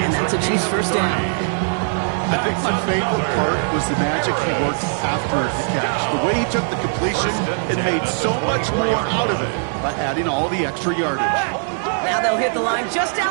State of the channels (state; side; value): silent; left; digital silence